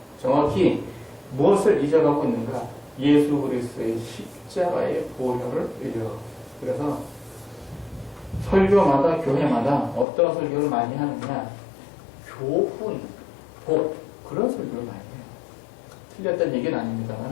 정확히 무엇을 잊어가고 있는가? 예수 그리스도의 십자가의 보혈을 잊어가고 있습니다. 그래서 설교마다 교회마다 어떤 설교를 많이 하느냐? 교훈, 복 그런 설교를 많이 해요. 틀렸다는 얘기는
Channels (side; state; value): right; drops out; at 10.1 s